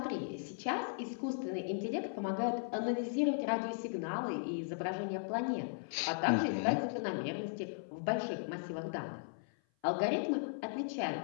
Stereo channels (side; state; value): right; silent; 53 dB below the other